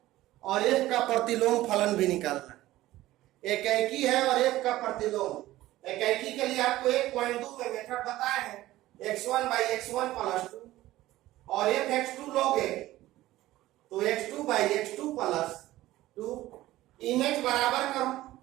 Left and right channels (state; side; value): quieter; left; 16.1 dB